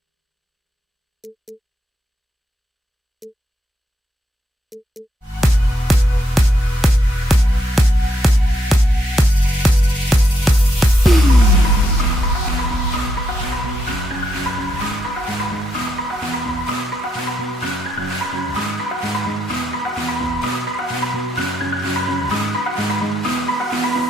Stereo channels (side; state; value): both; normal; correlation 0.79